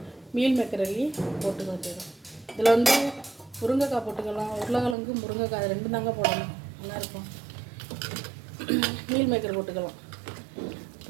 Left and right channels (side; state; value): left; drops out; at 5.0 s